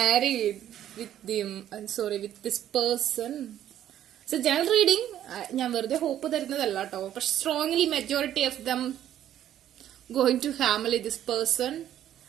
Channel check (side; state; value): left; quieter; 11.3 dB